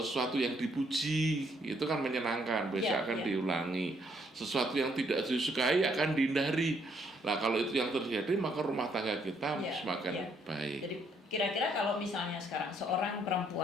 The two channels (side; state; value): both; normal; correlation 0.70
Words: sesuatu yang dipuji itu kan menyenangkan, besok akan diulangi. Sesuatu yang tidak disukai akan dihindari. Nah, kalau itu yang terjadi maka rumah tangga kita semakin baik. Jadi kira-kira kalau misalnya sekarang seorang